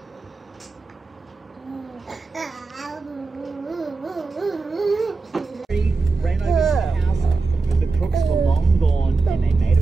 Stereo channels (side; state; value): left; quieter; 4.0 dB